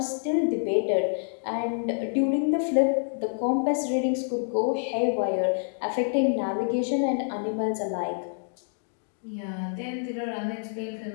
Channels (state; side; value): silent; right; digital silence